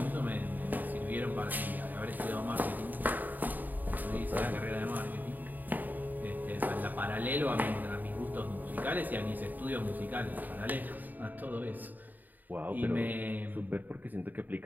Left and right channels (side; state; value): left; late; 0.086 ms